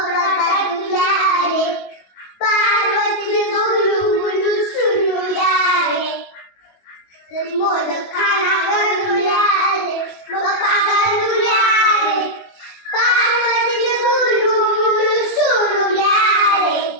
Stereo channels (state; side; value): late; right; 22 ms